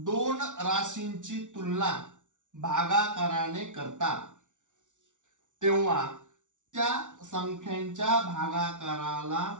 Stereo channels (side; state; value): left; late; 0.87 ms